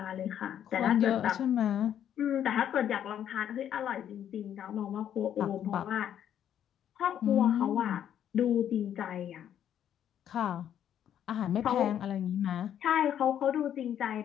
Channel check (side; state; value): right; quieter; 9.9 dB